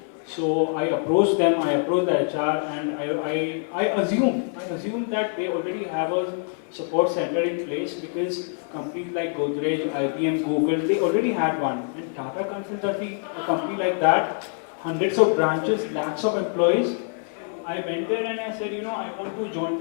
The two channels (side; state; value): right; silent; 56 dB below the other